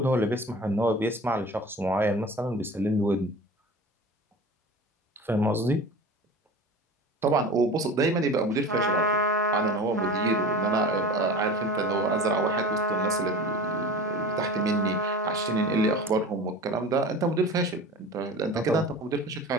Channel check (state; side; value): normal; both; correlation 0.36